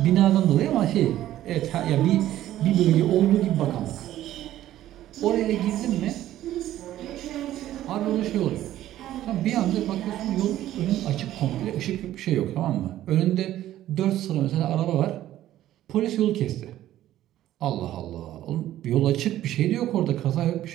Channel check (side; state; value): left; quieter; 13.3 dB